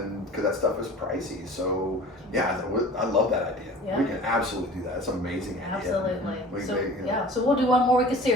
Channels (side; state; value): both; normal; correlation 0.43